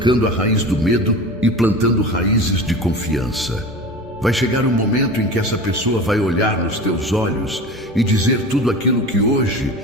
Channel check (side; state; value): both; normal; correlation 0.33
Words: a raiz do medo e plantando raízes de confiança. Vai chegar um momento em que essa pessoa vai olhar nos teus olhos e dizer tudo aquilo que hoje